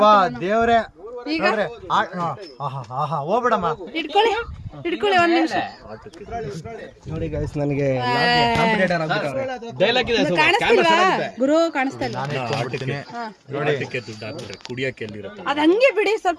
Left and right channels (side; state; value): both; identical; correlation 1.00